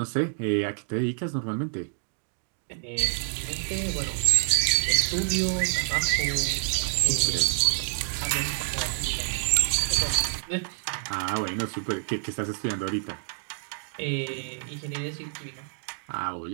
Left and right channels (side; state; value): left; silent; digital silence